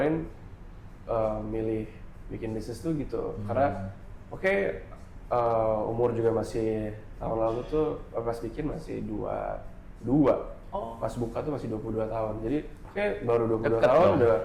milih bikin bisnis tuh gitu. Karena umur juga masih tahun lalu tuh pas bikin masih 22. Pas buka tuh masih 22 tahun. Jadi baru 22 tahun udah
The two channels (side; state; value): both; identical; correlation 1.00